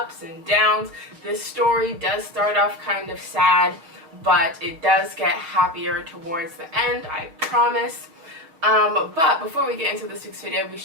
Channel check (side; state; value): left; late; 6.3 ms